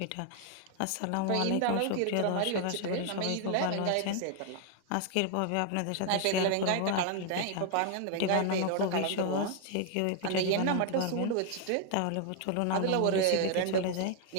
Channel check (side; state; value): both; different; correlation 0.00